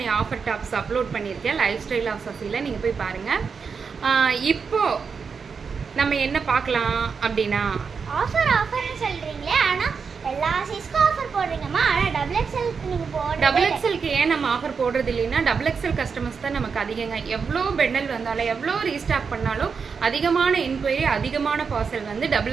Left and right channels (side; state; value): left; quieter; 5.7 dB